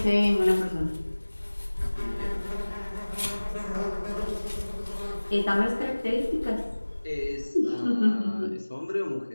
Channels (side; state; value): both; inverted; correlation -1.00